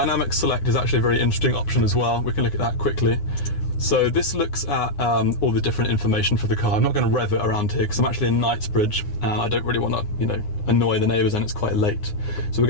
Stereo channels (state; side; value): late; right; 9.7 ms